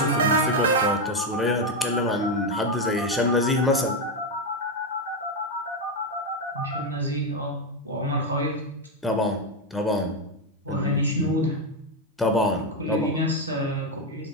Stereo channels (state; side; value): normal; both; correlation 0.07